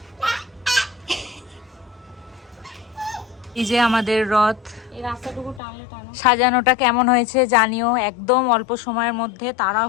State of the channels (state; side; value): drops out; right; at 5.6 s